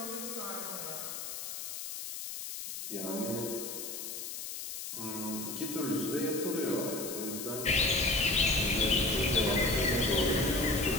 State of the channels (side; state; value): left; noise; hiss, 7 dB below the sound